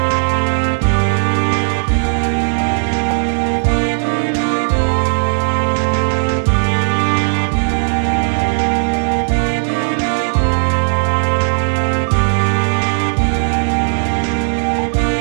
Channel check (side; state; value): left; silent; digital silence